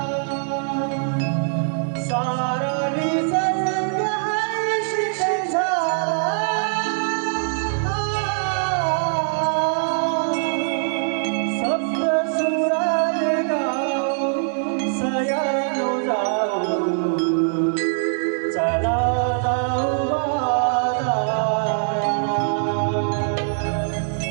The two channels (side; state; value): left; silent; digital silence